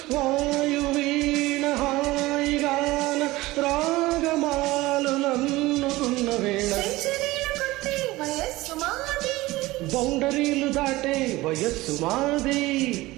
వాయువీణ హాయిగాన రాగమాలు నన్నుకున్న వేళ. బౌండరీలు దాటే వయస్సు మాది,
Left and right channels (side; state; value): left; quieter; 19.2 dB